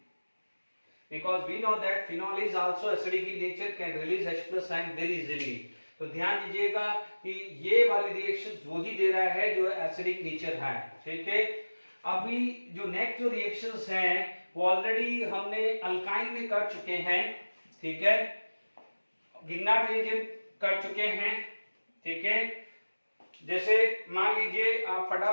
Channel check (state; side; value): inverted; both; correlation -1.00